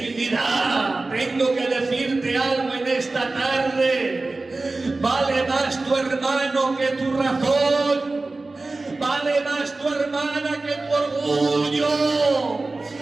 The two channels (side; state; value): left; quieter; 3.3 dB